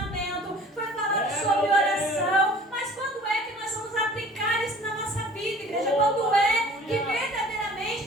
foi falado sobre oração, mas quando é que nós vamos aplicar isso na nossa vida, igreja? Quando é que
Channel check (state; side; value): normal; both; correlation 0.48